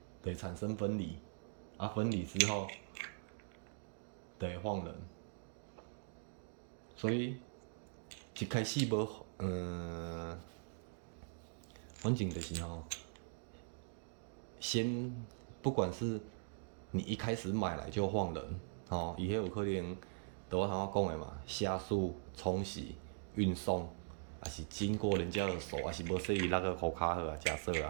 就会产生分离，啊，分离之后，就会晃人。所以一开始无，反正就是先不管是你一开始买来就放人，伊迄有可能，就我头仔讲的嘛，下速、冲洗、运送，还是经过人家的手，还是无说伊那个护卡好啊，假设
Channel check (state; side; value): silent; left; digital silence